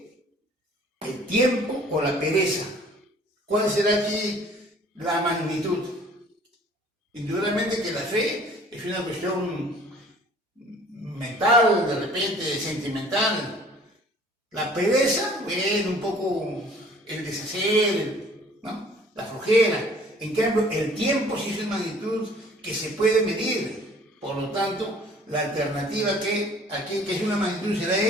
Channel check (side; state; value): both; normal; correlation 0.53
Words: el tiempo o la pereza? ¿Cuál será aquí la magnitud? Indudablemente que la fe es una cuestión mental, de repente sentimental. La pereza, bueno, un poco el deshacer, ¿no? La flojera. En cambio, el tiempo sí es una magnitud que se puede medir. Por lo tanto, la alternativa que aquí, que es una magnitud, será